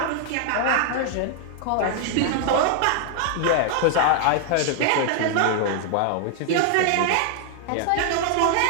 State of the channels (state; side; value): different; both; correlation 0.00